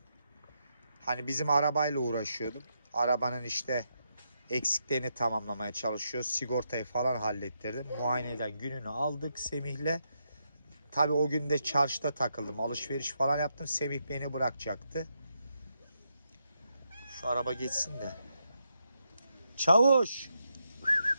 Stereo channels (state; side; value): inverted; both; correlation -0.81